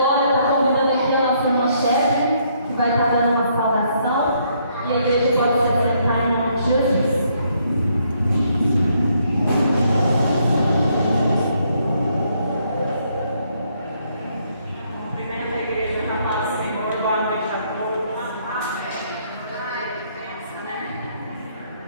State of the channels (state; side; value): inverted; both; correlation -0.71